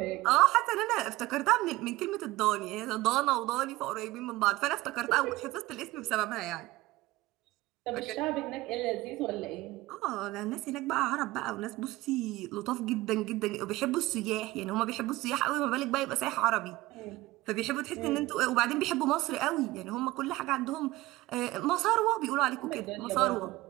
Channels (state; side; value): quieter; left; 18.6 dB